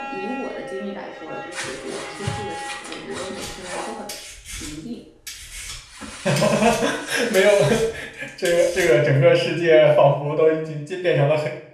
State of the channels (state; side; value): identical; both; correlation 1.00